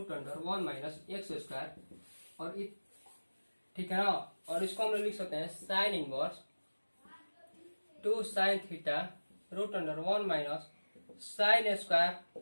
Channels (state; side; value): inverted; both; correlation -1.00